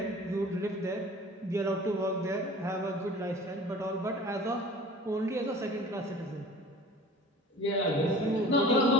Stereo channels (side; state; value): both; normal; correlation 0.44